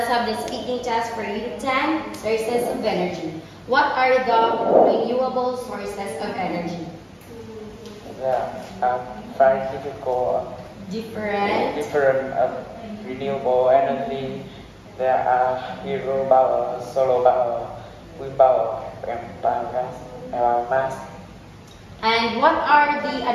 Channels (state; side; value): identical; both; correlation 1.00